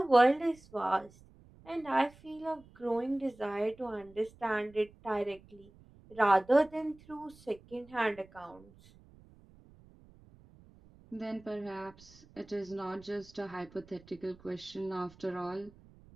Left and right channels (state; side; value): noise; right; rumble, 25 dB below the sound